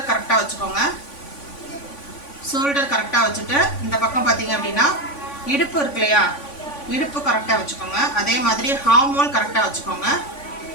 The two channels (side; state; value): right; late; 3.5 ms